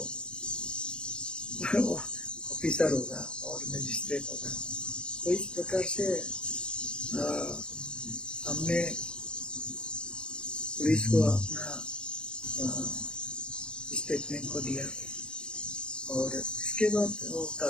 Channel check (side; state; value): right; late; 0.052 ms